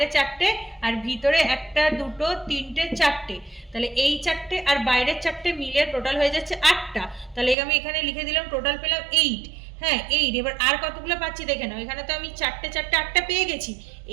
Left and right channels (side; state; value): left; drops out; at 7.6 s